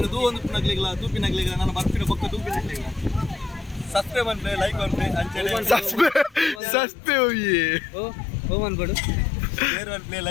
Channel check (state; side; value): drops out; right; at 6.6 s